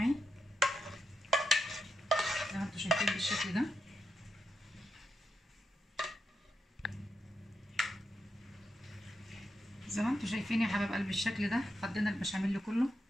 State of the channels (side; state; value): both; normal; correlation 0.84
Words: زي ما انتم شايفين بالشكل ده. زي ما انتم شايفين يا حبايب قلبي بالشكل ده. فضينا البشاميل كله.